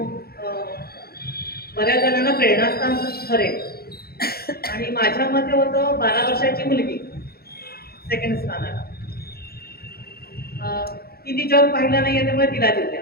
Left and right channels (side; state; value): right; late; 0.45 ms